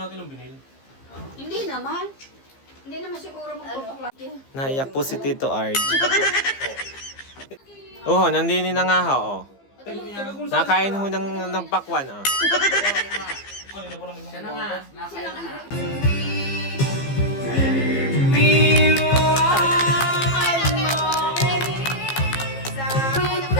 natin ang binil. Hindi naman. Hindi naman siguro magtutukla. Naiyak po si Tito Arj. Oo, nandini na nga ho. Oh. Nakain ho ng pakwan. Oh. Siya na nga. Nasaya na nga.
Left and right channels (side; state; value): right; late; 15 ms